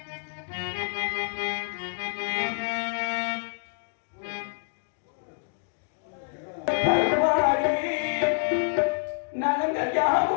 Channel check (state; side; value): silent; right; digital silence